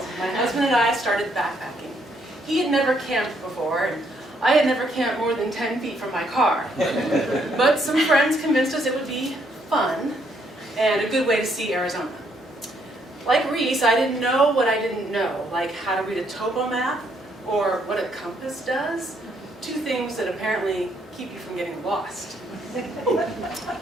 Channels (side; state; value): both; normal; correlation 0.71